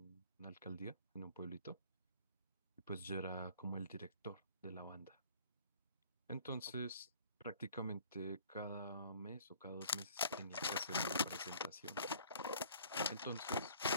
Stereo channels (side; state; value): both; inverted; correlation -0.53